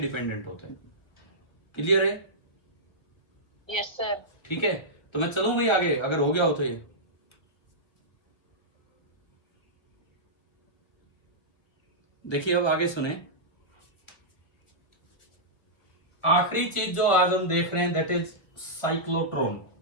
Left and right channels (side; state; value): right; late; 1.4 ms